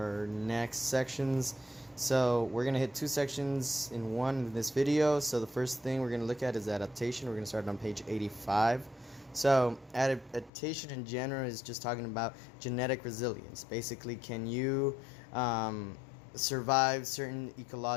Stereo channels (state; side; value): drops out; right; at 10.5 s